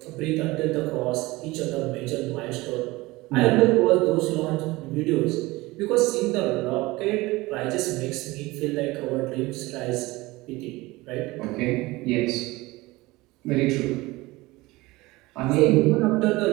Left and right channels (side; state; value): left; quieter; 20.8 dB